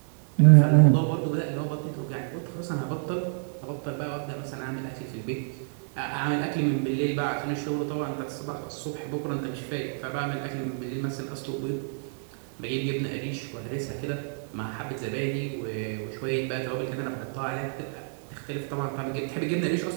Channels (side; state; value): left; silent; 56 dB below the other